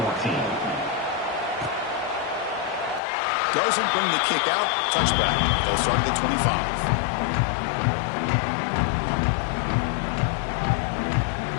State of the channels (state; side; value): drops out; right; at 3.0 s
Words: Doesn't bring the kick out. Touchback. They'll start at the 25.